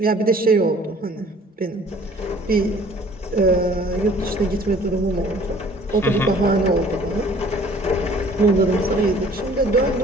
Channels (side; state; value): both; normal; correlation 0.53